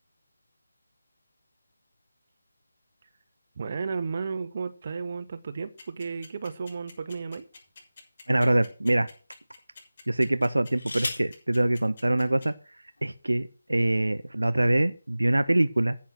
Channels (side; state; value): both; inverted; correlation -0.99